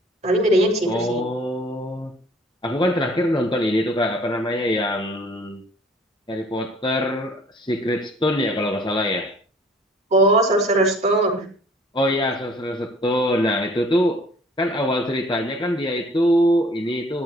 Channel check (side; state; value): both; normal; correlation 0.53